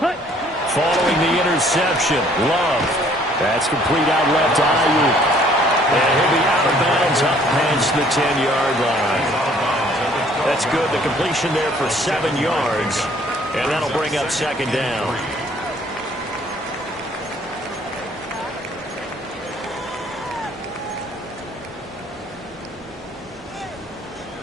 Following the interception, Love. That's complete out left to Ayuk. And he'll be out of bounds up past the 10-yard line. That's good. The completion there for 7 yards. And that'll bring up second down.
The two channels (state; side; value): normal; both; correlation 0.60